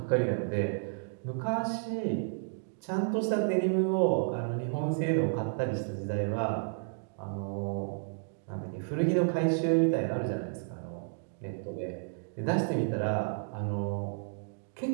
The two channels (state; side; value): silent; left; digital silence